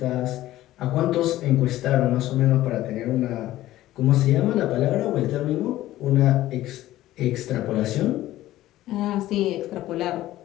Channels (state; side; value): quieter; right; 15.0 dB